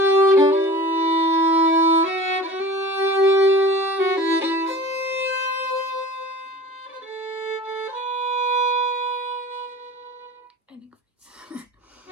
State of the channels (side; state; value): both; normal; correlation 0.38